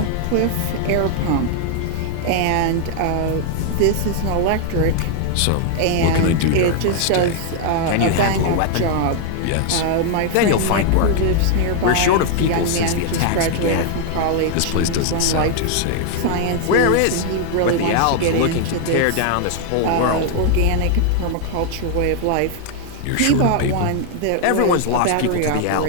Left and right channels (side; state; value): both; different; correlation 0.00